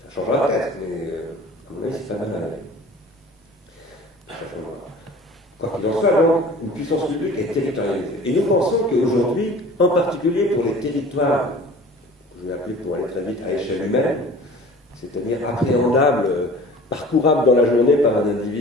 Ça changera peut-être, mais à mon avis, c'est pas mal à aller. Ça changera. Quoi qu'il en soit, donc, une puissance publique est territorialisée. Et nous pensons qu'aujourd'hui, en particulier pour les territoires, je vais appeler pour aller très vite à échelle humaine, c'est-à-dire appréhendable, parcourable dans la journée par un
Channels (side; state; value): both; normal; correlation 0.44